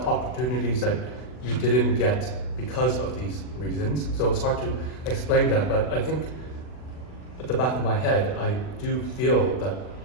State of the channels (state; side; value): late; right; 40 ms